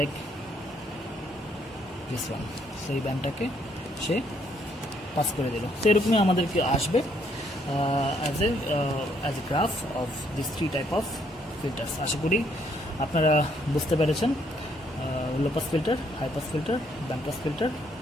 this one. So এই ব্যান্ডটাকে সে পাস করে দিল। তো এরকমই আমাদেরকে আসবে as a graph of this 3 type of filters. আশা করি আপনারা বুঝতে পেরেছেন low pass filter, high pass filter, band pass filter.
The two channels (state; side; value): normal; both; correlation 0.69